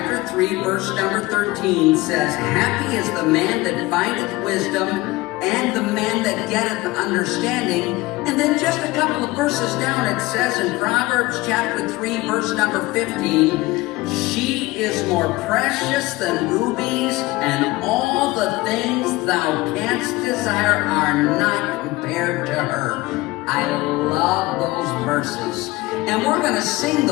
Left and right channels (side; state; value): right; quieter; 20.2 dB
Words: 3, verse number 13 says, "Happy is the man that findeth wisdom, and the man that getteth understanding." And then just a couple of verses down it says in Proverbs chapter 3, verse number 15, "She is more precious than rubies, and all the things thou canst desire are not compared to her." I love those verses. And we're going to sing